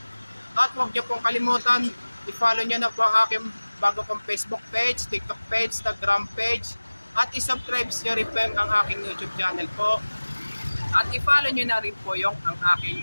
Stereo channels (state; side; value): inverted; both; correlation -1.00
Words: At huwag niyo pong kalimutan, i-follow niyo na po ang aking bago kong Facebook page, TikTok page, Instagram page. At i-subscribe niyo rin po ang aking YouTube channel po. At i-follow niyo na rin po yung ang aking